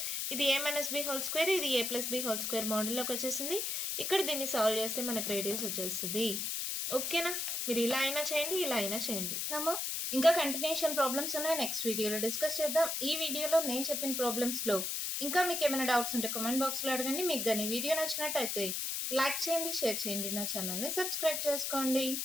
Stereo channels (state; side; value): noise; left; hiss, 1 dB below the sound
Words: ఇది ఏ మైనస్ బి హోల్ స్క్వేర్, ఇది ఏ ప్లస్ బి హోల్ స్క్వేర్ మోడల్లోకి వచ్చేసింది. ఇక్కడ దీన్ని సాల్వ్ చేస్తే మనకు రేడియస్ వచ్చేస్తుంది. ఓకేనా? మీరు ఇలా అయినా చేయండి, ఇలా అయినా చేయండి. నమ్మా ఇంకా కంటిన్యూషన్ ప్రాబ్లమ్స్ ఉన్నాయి, నెక్స్ట్ వీడియోలో డిస్కస్ చేద్దాం. ఈ వీడియోలో నేను చెప్పిన ప్రాబ్లమ్స్లో ఇంకా మీకు ఏమైనా డౌట్స్ ఉంటే కామెంట్ బాక్స్లో అడగండి. మీకు కానీ వీడియో నచ్చినట్టయితే లైక్ చేయండి, షేర్ చేయండి, నా ఛానల్ని సబ్స్క్రైబ్ చేసుకోండి.